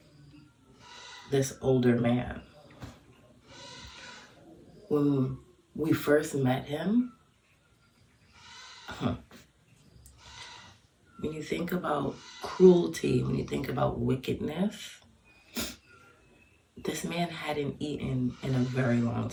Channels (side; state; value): both; identical; correlation 1.00